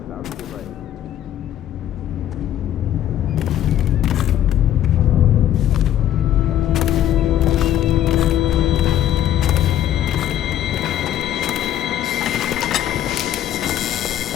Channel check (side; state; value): right; quieter; 11.4 dB